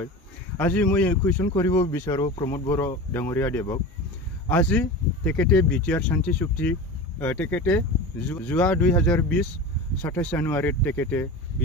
আজি মই কুৱেশ্যন কৰিব বিচাৰো प्रमद बर' ডাঙৰীয়া দেৱক আজি তেখেতে বিটিআৰ শান্তি চুক্তি তেখেতে যোৱা 2020 27 জানুৱাৰীত তেখেতে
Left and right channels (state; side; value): normal; both; correlation 0.30